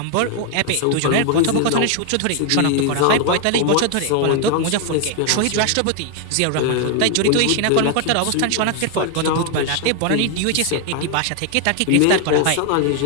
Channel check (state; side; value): different; both; correlation 0.00